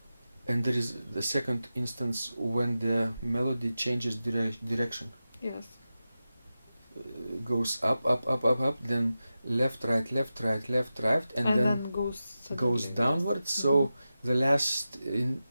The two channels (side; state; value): both; inverted; correlation -0.93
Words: And there is the second instance when the melody changes direction. Yes. Goes up, then left, right, and then goes downwards. So the last